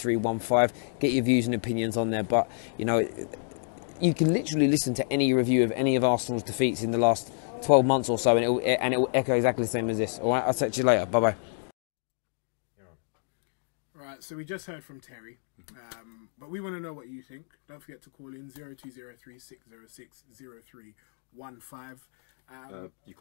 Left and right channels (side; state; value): right; silent; digital silence